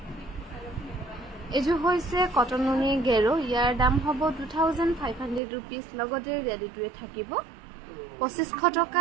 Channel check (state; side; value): drops out; left; at 5.4 s